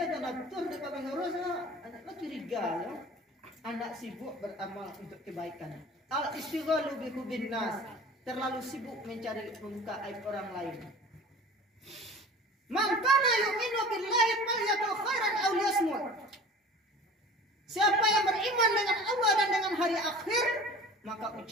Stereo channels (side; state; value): both; normal; correlation 0.41